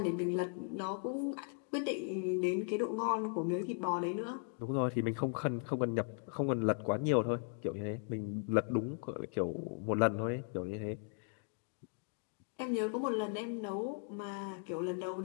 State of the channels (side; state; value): right; silent; 53 dB below the other